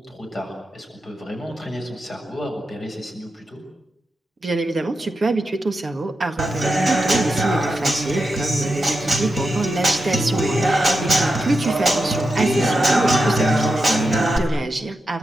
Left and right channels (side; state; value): both; normal; correlation 0.89